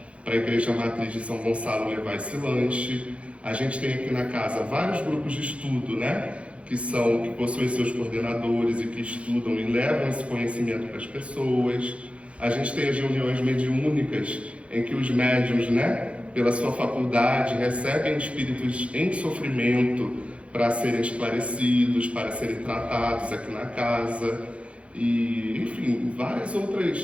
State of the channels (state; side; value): late; left; 0.062 ms